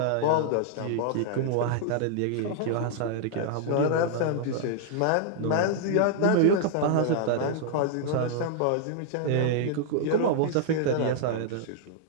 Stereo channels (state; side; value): different; both; correlation -0.01